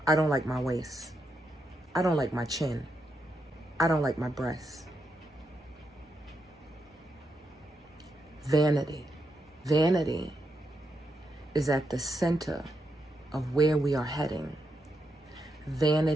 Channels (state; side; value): normal; both; correlation 0.83